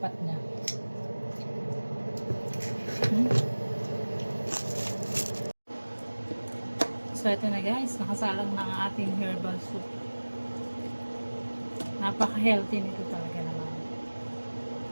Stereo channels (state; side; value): inverted; both; correlation -1.00